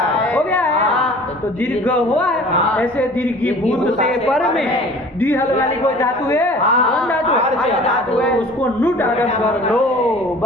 है, तो दीर्घ हुआ है। ऐसे दीर्घीभूत से पर में द्विहल वाली कोई धातु है, कौन धातु है? उसको नुट आगम कर लो,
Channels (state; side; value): normal; both; correlation 0.46